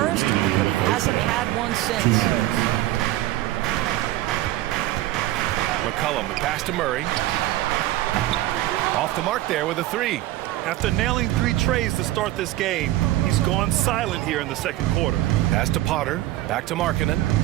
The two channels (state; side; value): quieter; left; 15.7 dB